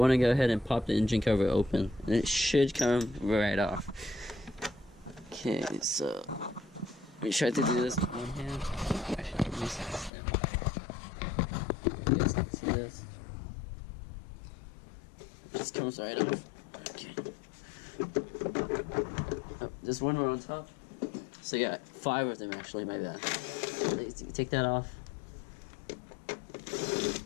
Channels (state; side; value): drops out; right; at 10.1 s